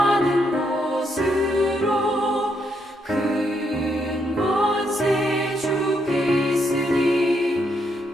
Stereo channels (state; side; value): normal; both; correlation 0.77